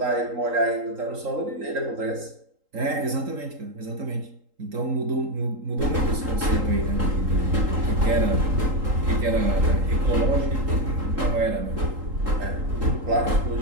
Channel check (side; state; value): left; late; 3.8 ms